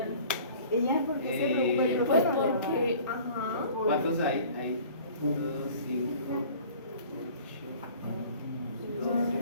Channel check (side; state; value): both; inverted; correlation -0.48